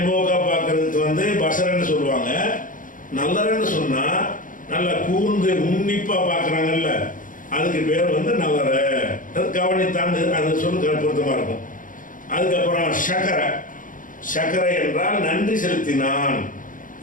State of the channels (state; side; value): late; right; 0.39 ms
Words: பார்க்கறதுக்கு வந்து பசரன்னு சொல்லுவாங்க. நல்லறன்னு சொன்னா நல்லா கூர்ந்து உன்னிப்பா பார்க்கறாங்கல்ல, அதுக்கு பேர் வந்து நல்லற. அது கவனித்தாண்டு அது சொல்லு பொருத்தமா இருக்கும். அதுக்கப்புறம் சக்கரை. சக்கரை என்றால் நன்றி செலுத்தினான்.